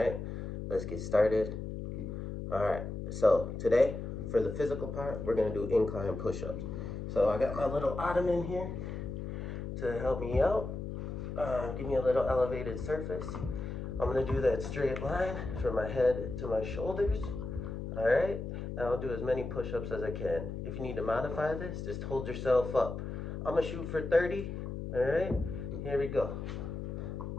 Let's get started. Alright, so today, for the physical part, we're going to do incline push-ups. So I got my little ottoman here to help me out. Give me a little elevated surface. I'm going to do that straight line from my head to my shoulders. Alright, and I'll do as many push-ups as I can. If you need to modify this, just hold yourself up. I'm going to shoot for 30. Alright, here we go.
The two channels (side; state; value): left; noise; hum, 6 dB below the sound